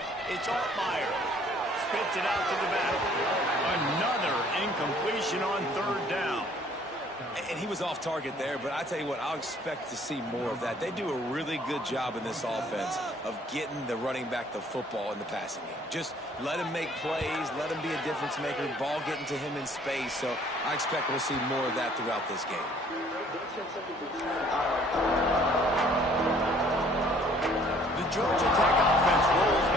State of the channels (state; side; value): normal; both; correlation 0.58